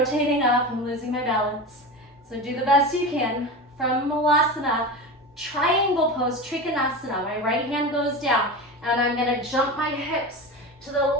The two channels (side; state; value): both; normal; correlation 0.26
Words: up. I'm losing my balance. So do the best you can. From Malasana, triangle pose, Trikonasana. My right hand goes down, and I'm gonna jump my hips to the